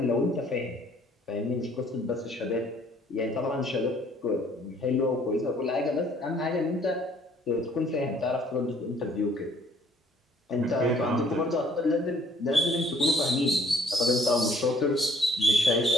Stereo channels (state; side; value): normal; both; correlation 0.60